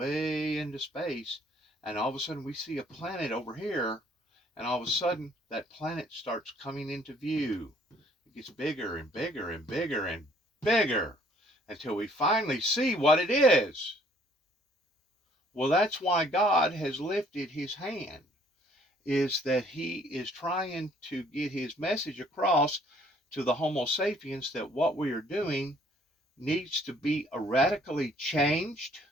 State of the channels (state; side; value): normal; both; correlation 0.61